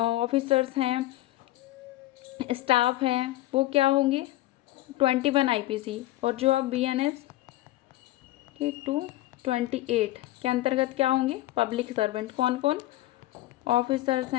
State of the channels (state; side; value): quieter; right; 16.6 dB